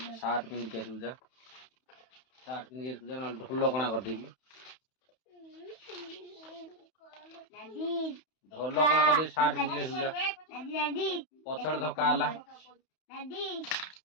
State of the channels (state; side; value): late; right; 31 ms